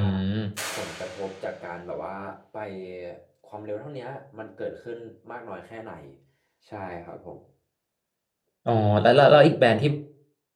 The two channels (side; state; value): both; identical; correlation 1.00